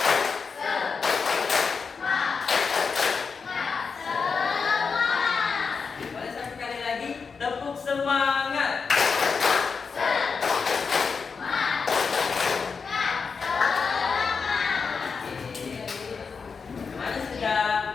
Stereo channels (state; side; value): quieter; right; 5.3 dB